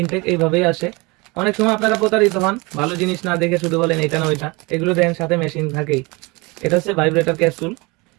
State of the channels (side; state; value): left; quieter; 25.7 dB